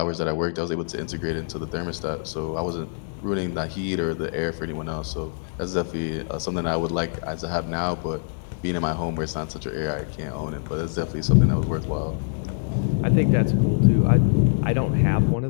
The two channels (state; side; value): silent; right; digital silence